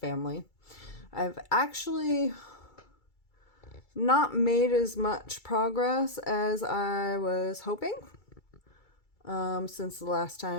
I've actually not made as much progress as I was hoping. Since the last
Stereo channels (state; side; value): late; right; 2.3 ms